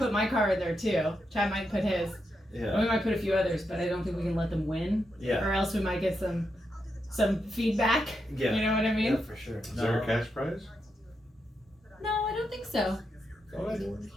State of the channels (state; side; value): normal; both; correlation 0.84